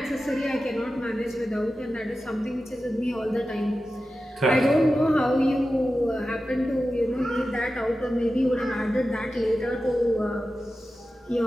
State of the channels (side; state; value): both; normal; correlation 0.93